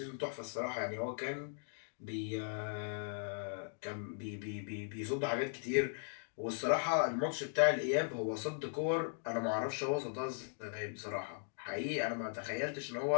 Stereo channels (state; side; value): silent; right; digital silence